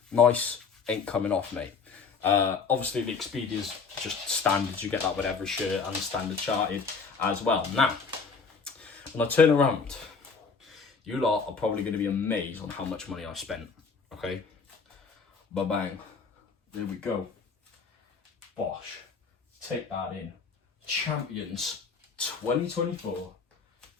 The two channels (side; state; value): right; quieter; 5.2 dB